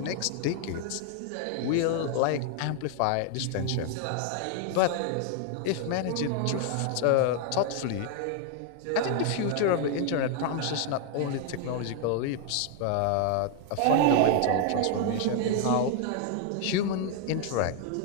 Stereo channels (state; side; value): different; both; correlation 0.00